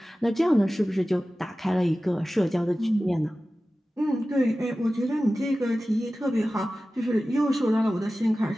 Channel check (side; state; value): both; normal; correlation 0.96